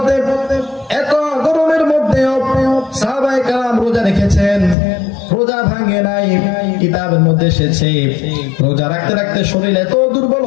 এত গরমের মধ্যেও সাহাবায়ে কেরাম রোজা রেখেছেন, রোজা ভাঙে নাই। কিতাবের মধ্যে এসেছে রোজা রাখতে রাখতে শরীর এত দুর্বল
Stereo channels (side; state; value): right; drops out; at 4.8 s